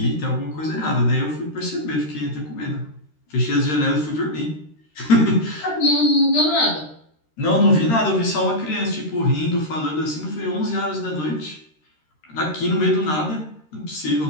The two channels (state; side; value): late; right; 13 ms